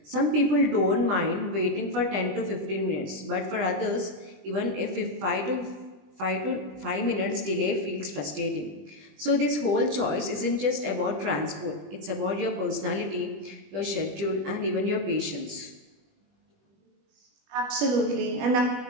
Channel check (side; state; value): left; late; 20 ms